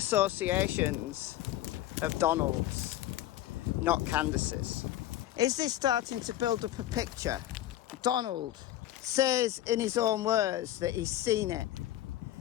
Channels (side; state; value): right; quieter; 13.5 dB